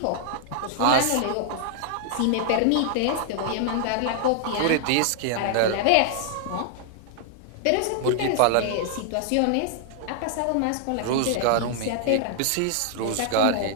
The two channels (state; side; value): different; both; correlation -0.01